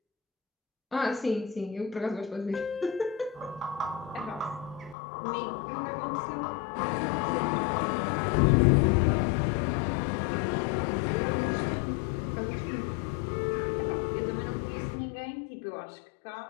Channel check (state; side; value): drops out; right; at 5.0 s